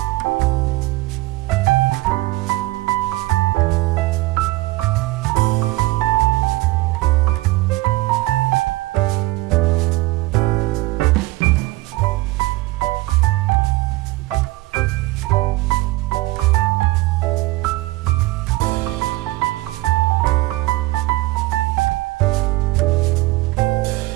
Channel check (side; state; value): left; quieter; 20.0 dB